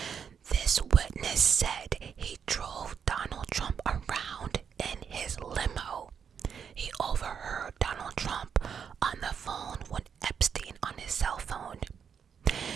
This witness said he drove Donald Trump around in his limo. He overheard Donald Trump on the phone with Epstein on his cell phone.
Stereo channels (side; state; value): left; quieter; 7.2 dB